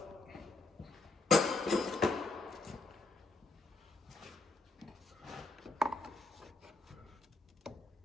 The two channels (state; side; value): quieter; right; 3.3 dB